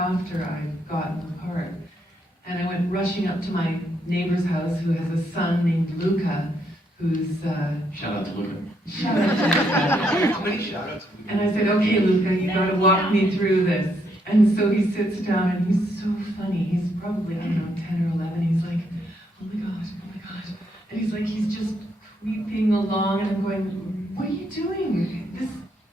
I'd gotten the part. And I went rushing up to my neighbor's house, who has a son named Luca, who's Shout out to Luca. Shout out to Luca. How many shout outs have we And I said, okay, Luca, you gotta walk me through this. And so he sits down, and he's so funny. He's probably, I don't know, 10 or 11. He's like, oh my gosh. And he's just creeping along, and I'm going, what are you doing?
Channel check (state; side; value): normal; both; correlation 0.75